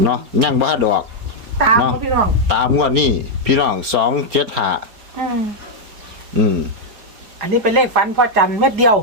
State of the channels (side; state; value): left; late; 4.3 ms